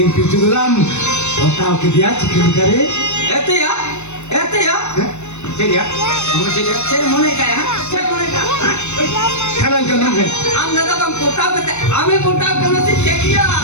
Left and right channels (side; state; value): right; late; 0.82 ms